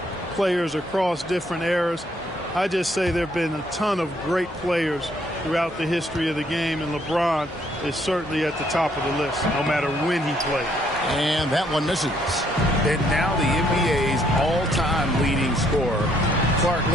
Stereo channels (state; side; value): normal; both; correlation 0.68